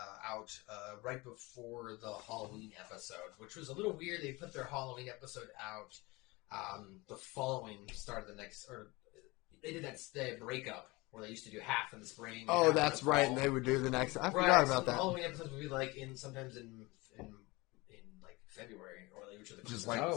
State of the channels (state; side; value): quieter; right; 23.4 dB